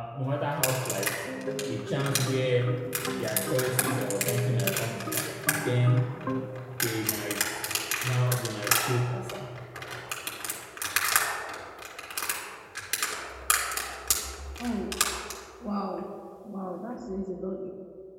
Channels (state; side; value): identical; both; correlation 1.00